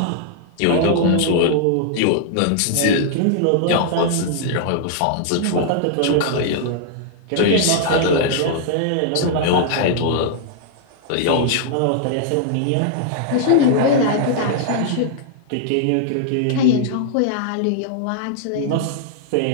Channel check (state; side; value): different; both; correlation -0.01